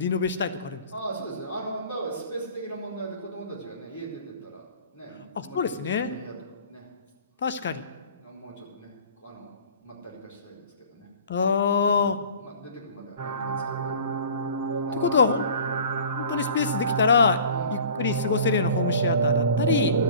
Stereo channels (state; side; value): inverted; both; correlation -0.45